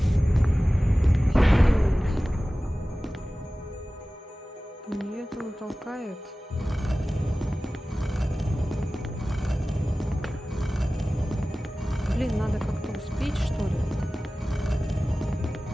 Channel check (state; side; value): normal; both; correlation 0.97